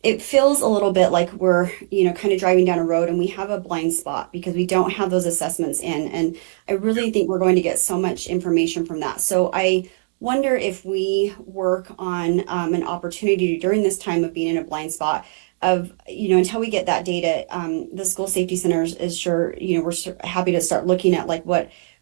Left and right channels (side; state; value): left; silent; digital silence